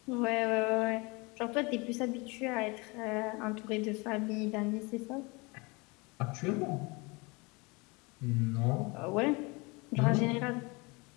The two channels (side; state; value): right; quieter; 27.2 dB